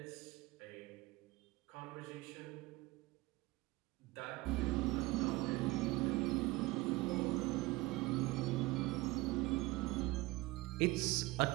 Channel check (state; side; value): quieter; left; 21.1 dB